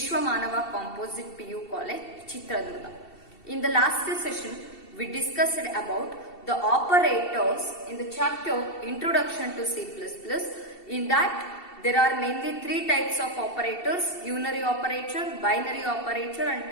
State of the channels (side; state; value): right; late; 2.7 ms